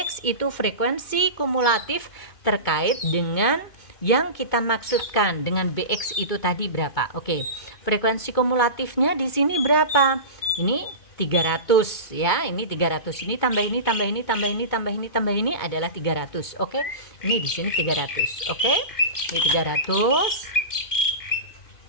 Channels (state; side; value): late; right; 2.2 ms